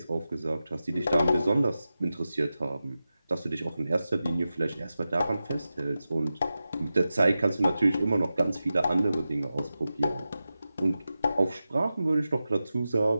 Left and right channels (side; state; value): both; inverted; correlation -0.93